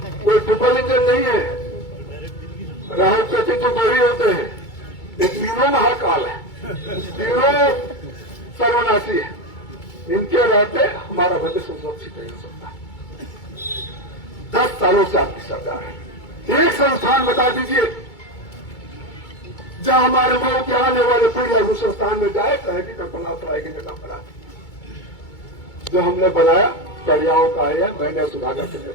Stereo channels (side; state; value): right; late; 2.3 ms